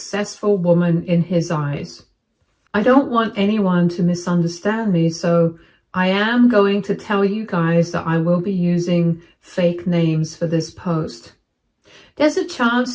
woman in his eyes. I don't want anyone to misunderstand me, so I am going to tell you guys that I will be using fake names for this post. There's a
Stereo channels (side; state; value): both; identical; correlation 1.00